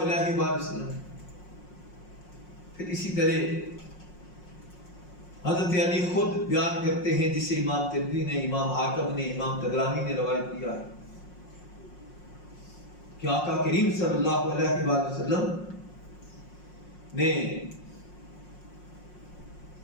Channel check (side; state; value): right; late; 5.5 ms